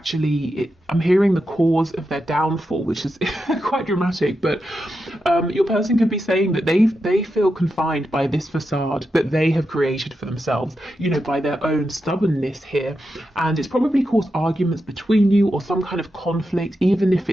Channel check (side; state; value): both; normal; correlation 0.87